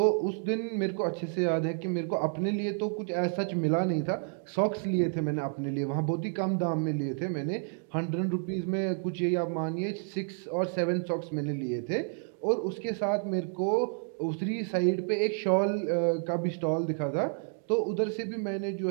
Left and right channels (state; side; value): silent; left; 58 dB below the other